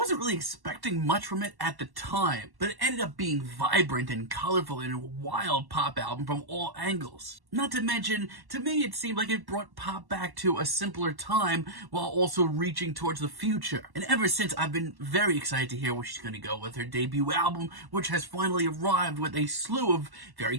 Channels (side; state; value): left; late; 1.1 ms